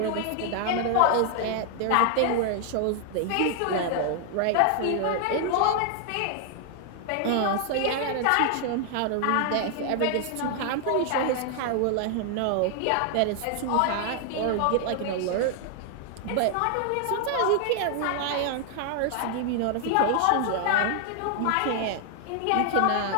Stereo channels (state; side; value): different; both; correlation 0.00